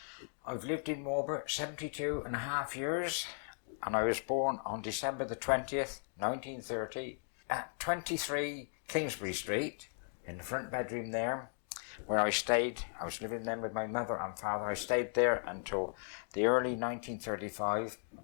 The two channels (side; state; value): right; silent; 53 dB below the other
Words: I've lived in Marlborough 72 and a half years, and I was born on December the 20th, 1930, at 23 Kingsbury Street, in the front bedroom there, where I stayed. I was living then with my mother and father. I stayed there until the early 1935.